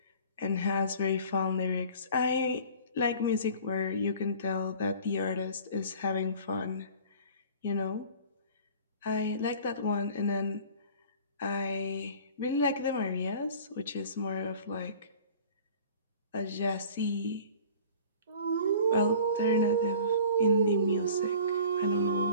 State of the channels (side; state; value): both; inverted; correlation -0.45